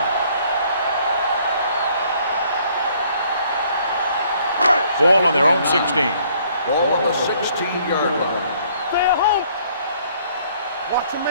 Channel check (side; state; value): both; inverted; correlation -0.62